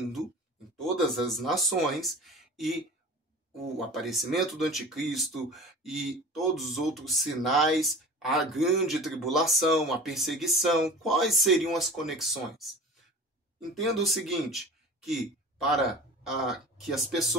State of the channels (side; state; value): both; normal; correlation 0.38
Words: em todas as nações, e o aparecimento do anticristo e todos os outros sinais, a grande tribulação, a perseguição? Quais seriam as conexões? Entenda o seguinte, que para que as